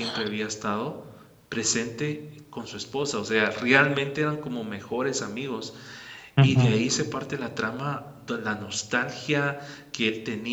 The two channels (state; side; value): identical; both; correlation 1.00